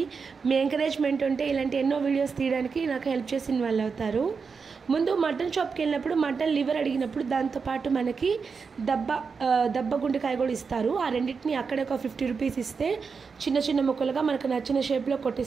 మీ ఎంకరేజ్మెంట్ ఉంటే ఇలాంటి ఎన్నో వీడియోస్ తీయడానికి నాకు హెల్ప్ చేసిన వాళ్ళు అవుతారు. ముందు మటన్ షాప్కి వెళ్ళినప్పుడు మటన్ లివర్ అడిగినప్పుడు దాంతోపాటు మనకి దబ్బ గుండెకాయ కూడా ఇస్తారు. ఆ రెండింటిని అక్కడే ఒక 50 రూపీస్ ఇస్తే చిన్న ముక్కలుగా మనకు నచ్చిన షేప్లో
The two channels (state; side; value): quieter; left; 5.3 dB